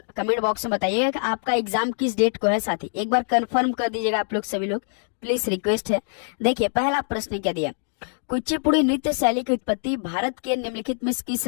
कमेंट बॉक्स में बताइएगा कि आपका एग्जाम किस डेट को है। साथी एक बार कंफर्म कर दीजिएगा आप लोग, सभी लोग प्लीज रिक्वेस्ट है। देखिए पहला प्रश्न क्या दिया, कुचिपुड़ी नृत्य शैली की उत्पत्ति भारत के निम्नलिखित में किस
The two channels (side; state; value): right; silent; digital silence